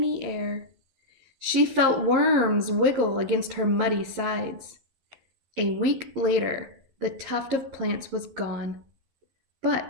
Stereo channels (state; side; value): late; left; 11 ms